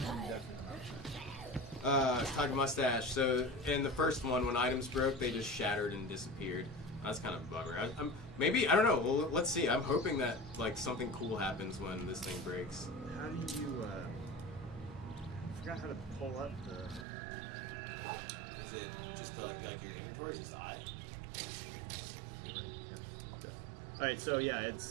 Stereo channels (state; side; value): drops out; left; at 17.1 s